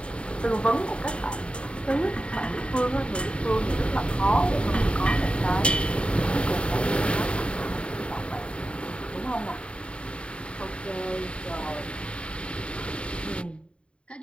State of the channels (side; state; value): right; late; 0.057 ms